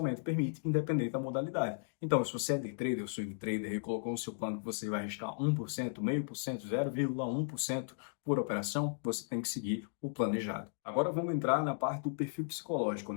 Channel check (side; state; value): right; silent; digital silence